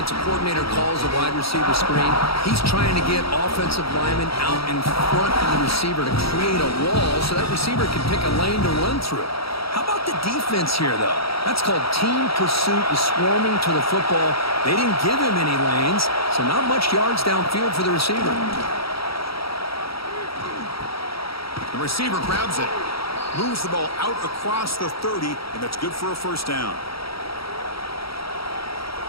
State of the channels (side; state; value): right; late; 0.75 ms